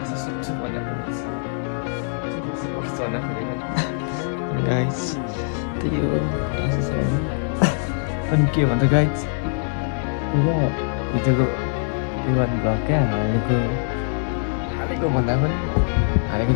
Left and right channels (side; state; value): right; silent; 61 dB below the other